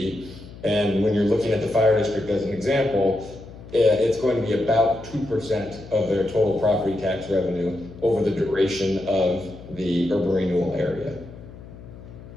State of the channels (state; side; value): noise; left; hum, 17 dB below the sound